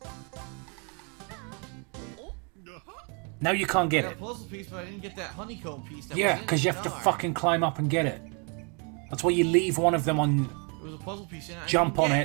Now you can't I get got it. a puzzle piece, but I didn't get that honeycomb piece. That Yeah, went in because the you have to star. fucking climb up and get it. That's why you leave one of them on There was a puzzle piece in it. I Jump didn't on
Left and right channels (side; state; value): left; quieter; 35.1 dB